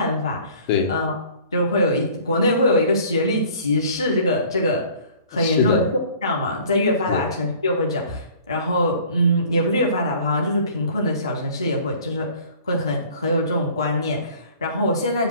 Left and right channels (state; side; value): inverted; both; correlation -0.50